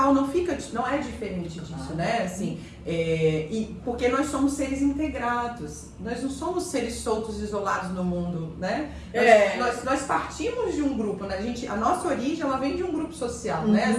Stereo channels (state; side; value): identical; both; correlation 1.00